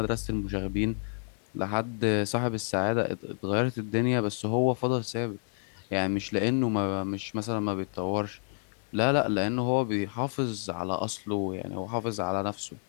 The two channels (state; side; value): silent; right; digital silence